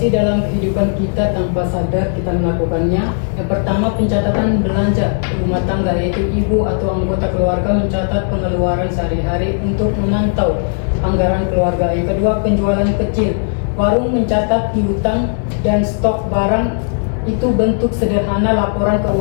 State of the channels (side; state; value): right; silent; digital silence